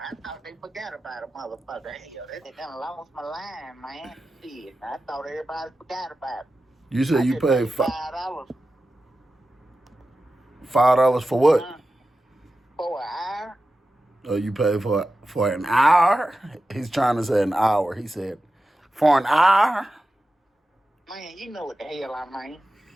I thought they forgot about a motherfucker. Hell, they done lost my line, man. Shit, I thought everybody forgot about it. You said you paid $5. $5 for what? For an hour. Oh, you paid for an hour? He's trying to say an hour. He said, for an hour? Man, you know what the hell I mean.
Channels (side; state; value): both; normal; correlation 0.93